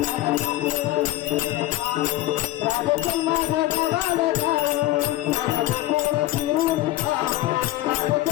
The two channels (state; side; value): quieter; right; 16.2 dB